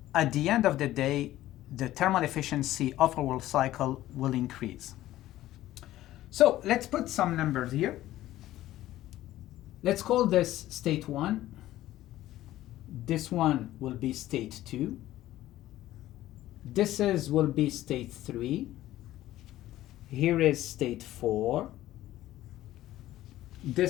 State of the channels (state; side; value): quieter; right; 14.7 dB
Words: at the end of the day, the thermal efficiency of our cycle will increase. So let's put some numbers here. Let's call this state 1. This one will be state 2. This will be state 3. Here is state 4.